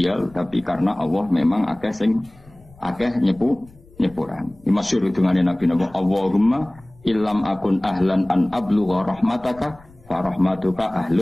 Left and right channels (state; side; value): noise; left; rumble, 26 dB below the sound